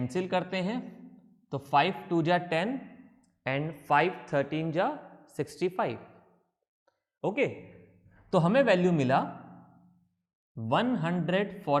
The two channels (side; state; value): both; identical; correlation 1.00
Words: करते हैं, तो 5 2 जा 10 एंड 5 13 जा 65, ओके, तो हमें वैल्यू मिला